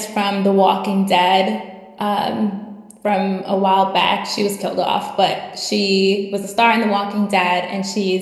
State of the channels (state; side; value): identical; both; correlation 1.00